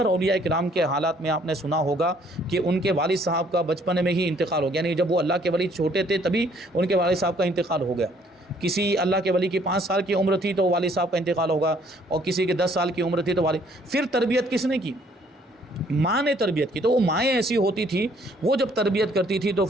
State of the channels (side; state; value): both; normal; correlation 0.63